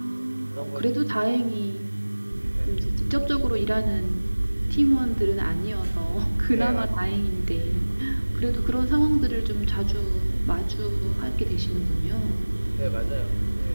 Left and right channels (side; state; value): both; inverted; correlation -1.00